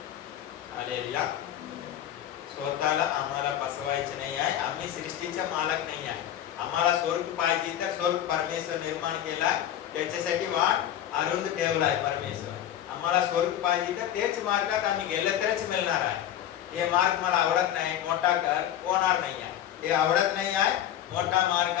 हालेलुया. स्वतःला आम्हाला फसवायचे नाही आहे. आम्ही सृष्टीचा मालक नाही आहे. आम्हाला स्वर्ग पाहिजे तर स्वर्ग परमेश्वर निर्माण केलाय, त्याच्यासाठी वाट अरुंद ठेवलाय परमेश्वर. आम्हाला स्वर्ग पाहिजे तर तेच मार्गात आम्ही गेले तरच मिळणार आहे. हे मार्ग मला आवडत नाही, मोठा कर, होणार नाही आहे. हे आवडत नाही आहे, मोठा मार्ग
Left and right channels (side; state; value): right; quieter; 11.3 dB